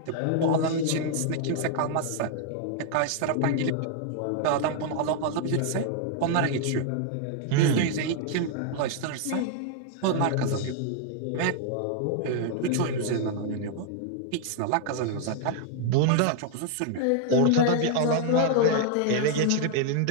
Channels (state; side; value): different; both; correlation 0.00